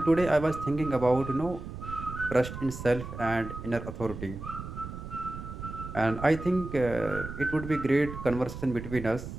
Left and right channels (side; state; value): right; noise; rumble, 9 dB below the sound